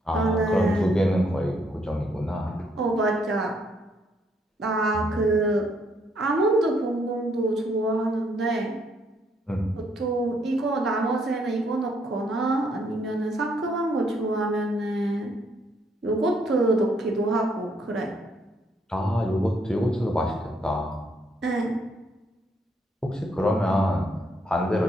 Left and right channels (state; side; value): normal; both; correlation 0.71